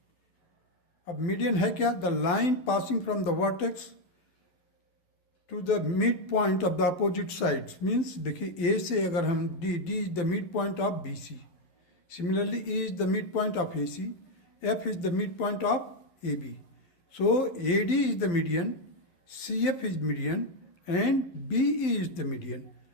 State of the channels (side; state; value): right; late; 11 ms